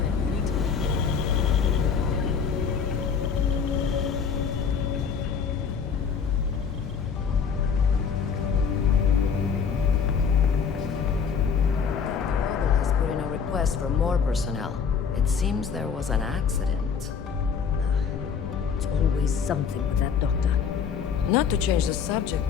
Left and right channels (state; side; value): quieter; right; 6.5 dB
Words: you need to... Robert has put in a request for more personnel. It seems there was an accident. It's always something with that doctor. Not to change the subject,